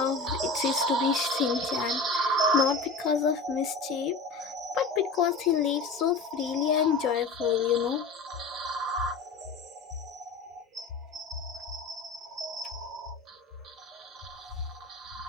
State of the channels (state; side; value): quieter; right; 3.8 dB